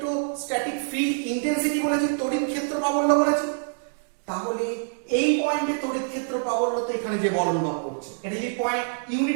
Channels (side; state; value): left; silent; digital silence